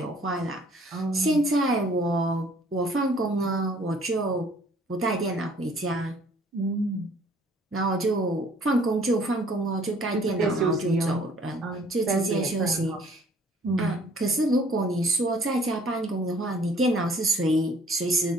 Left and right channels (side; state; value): both; normal; correlation 0.57